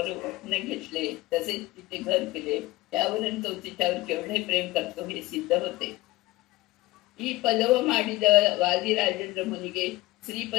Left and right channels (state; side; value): quieter; right; 19.3 dB